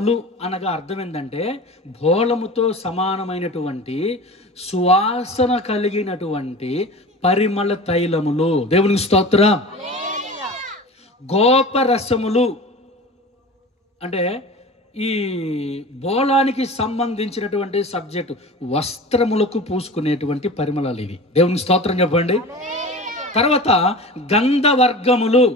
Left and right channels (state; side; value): normal; both; correlation 0.35